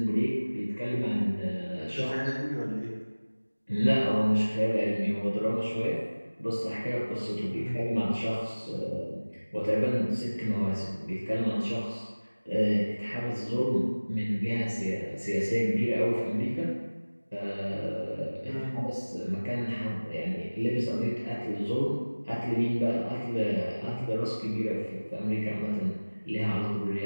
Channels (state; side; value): inverted; both; correlation -1.00